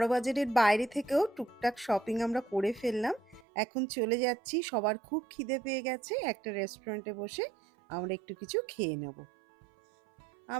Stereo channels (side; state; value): left; drops out; at 3.5 s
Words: বাইরে থেকেও টুকটাক শপিং আমরা করে ফেললাম। এখন চলে যাচ্ছি, সবার খুব খিদে পেয়ে গেছে, একটা রেস্টুরেন্টে বসে আমরা একটু কিছু খেয়ে নেব।